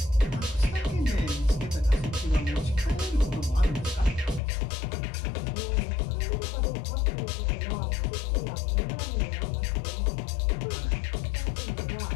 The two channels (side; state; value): right; drops out; at 4.4 s